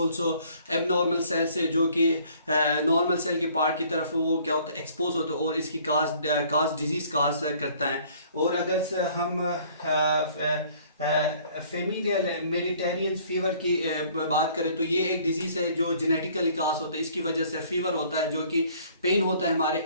एबनॉर्मल सेल से जो कि नॉर्मल सेल के पार्ट की तरफ वो क्या होता है एक्सपोज होता है, और इसकी काज डिजीज काज करता है। और अगर हम फेमिलियल मेडिटेरियन फीवर की बात करें तो ये एक डिजीज है जो जेनेटिकली काज होता है, इसकी वजह से फीवर होता है, जो कि पेन होता है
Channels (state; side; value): inverted; both; correlation -0.57